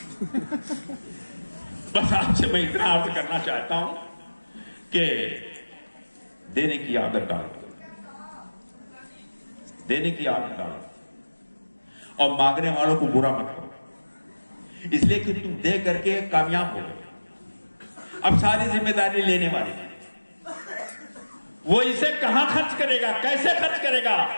بس آپ سے میں اتنا عرض کرنا چاہتا ہوں کہ دینے کی عادت ڈالو، دینے کی عادت ڈالو، اور مانگنے والوں کو برا مت کرو، اس لیے کہ تم دے کر کے کامیاب ہو گئے. اب ساری ذمہ داری لینے والے ہیں، وہ اسے کہاں خرچ کرے گا، کیسے خرچ کرے گا،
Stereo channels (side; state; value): both; inverted; correlation -1.00